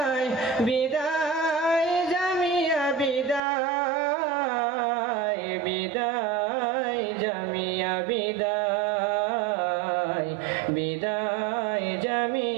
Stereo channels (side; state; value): left; drops out; at 3.4 s